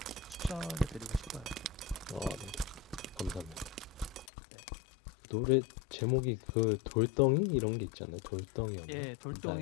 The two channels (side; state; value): right; drops out; at 4.2 s